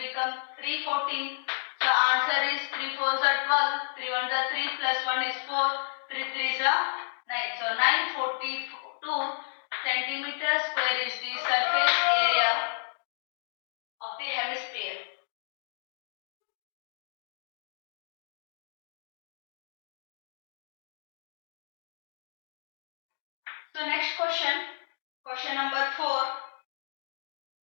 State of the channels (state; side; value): silent; right; digital silence